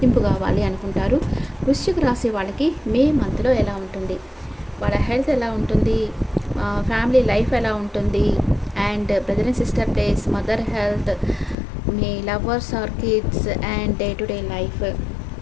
కావాలి అనుకుంటారు. వృశ్చిక రాశి వాళ్ళకి మే మంత్లో ఎలా ఉంటుంది, వాళ్ళ హెల్త్ ఎలా ఉంటుంది, ఫ్యామిలీ లైఫ్ ఎలా ఉంటుంది, and brother and sister days, mother health, మీ lovers or kids, and day to day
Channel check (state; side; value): drops out; right; at 11.6 s